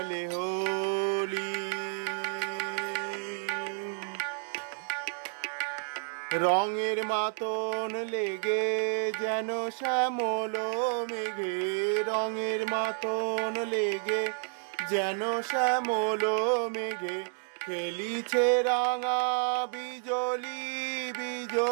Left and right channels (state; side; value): silent; left; 57 dB below the other